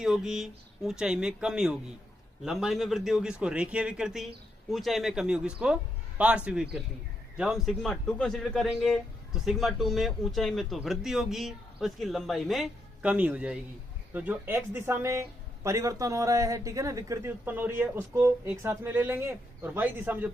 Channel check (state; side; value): normal; both; correlation 0.80